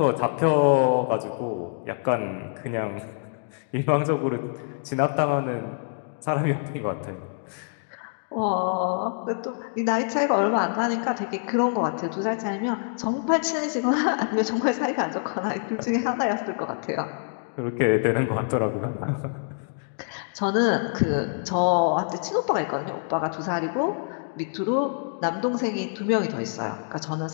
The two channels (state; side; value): silent; right; digital silence